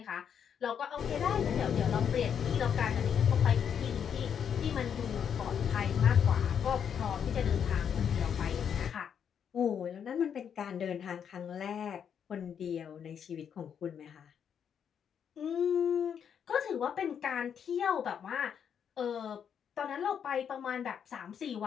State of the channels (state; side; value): quieter; right; 8.0 dB